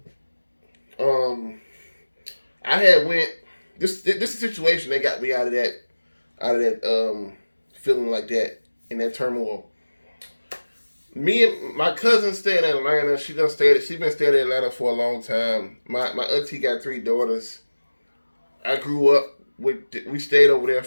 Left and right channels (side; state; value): both; inverted; correlation -1.00